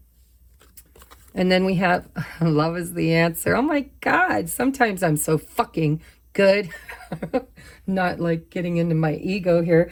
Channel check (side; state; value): both; identical; correlation 1.00